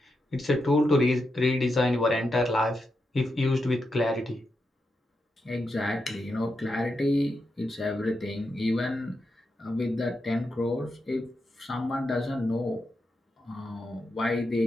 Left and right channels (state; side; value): normal; both; correlation 0.86